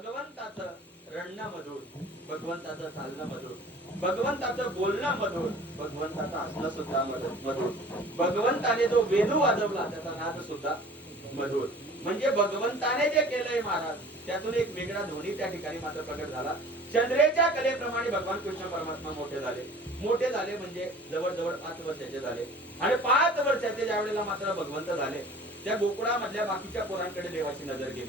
रडणं मधुर, भगवंताचं चालणं मधुर, भगवंताचं बोलणं मधुर, भगवंताचं हसणं सुद्धा मधुर, भगवंताने जो वेणू वाजवला त्याचा नाद सुद्धा मधुर. म्हणजे भगवंताने जे केलंय महाराज त्यातून एक वेगळा ध्वनी त्या ठिकाणी मात्र प्रकट झाला. चंद्रेच्या कलेप्रमाणे भगवान कृष्ण परमात्मा मोठे झाले. मोठे झाले म्हणजे जवळजवळ 5 वर्षाचे झाले. आणि 5 वर्षाचे ज्या वेळेला मात्र भगवंत झाले, त्या गोकुळामधल्या बाकीच्या पोरांकडे देवाची नजर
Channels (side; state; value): both; normal; correlation 0.46